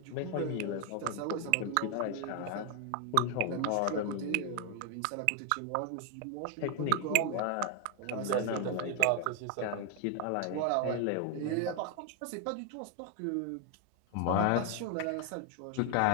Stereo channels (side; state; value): both; different; correlation 0.01